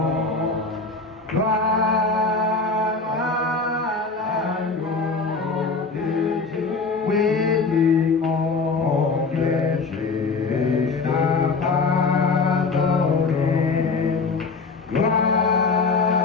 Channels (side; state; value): right; quieter; 4.2 dB